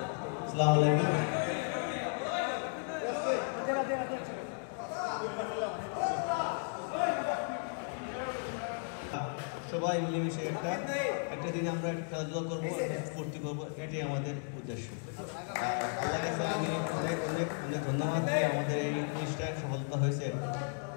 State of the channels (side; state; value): right; silent; 55 dB below the other